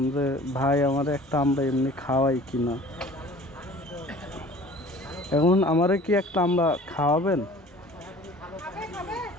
যে ভাই আমার একটা আমরা এমনি খাওয়াই কিনা। এখন আমারে কি একটা আমরা খাওয়াবেন?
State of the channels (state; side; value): normal; both; correlation 0.47